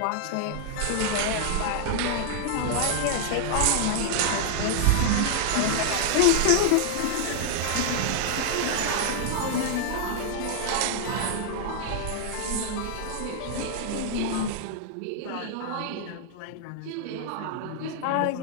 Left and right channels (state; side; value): different; both; correlation 0.00